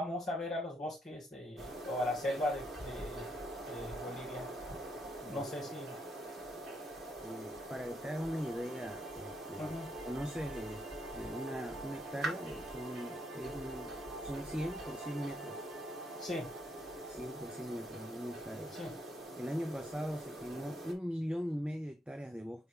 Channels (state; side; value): normal; both; correlation 0.76